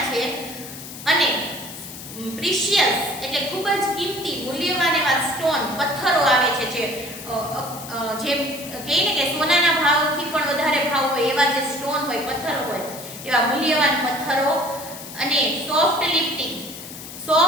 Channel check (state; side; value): noise; left; hiss, 13 dB below the sound